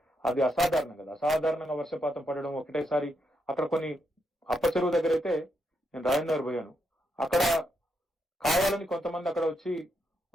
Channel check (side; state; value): both; normal; correlation 0.81